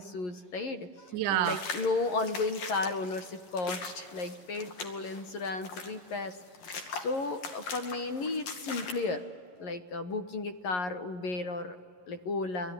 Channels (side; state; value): right; late; 11 ms